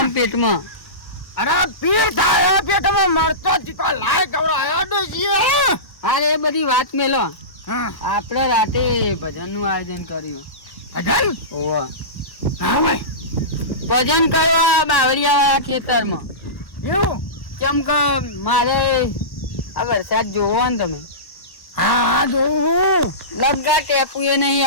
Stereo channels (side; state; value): right; late; 1.1 ms